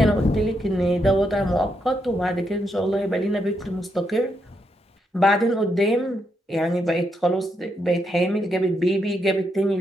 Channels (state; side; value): normal; both; correlation 0.80